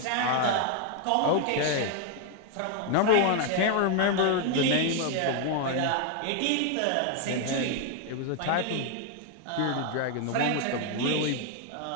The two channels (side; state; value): both; different; correlation 0.00